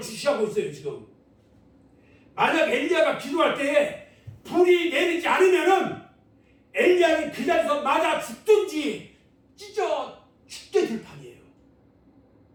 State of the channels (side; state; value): both; identical; correlation 1.00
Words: 주시하고 있어요. 지금 만약 엘리야가 기도할 때에 불이 내리지 않으면은 엘리야는 그 자리에서 맞아 죽든지 찢어 죽게 될 판이에요.